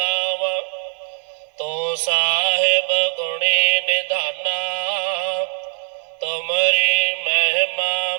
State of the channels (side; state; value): left; silent; digital silence